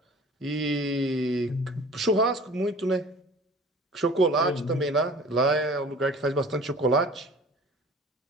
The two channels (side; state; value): both; normal; correlation 0.45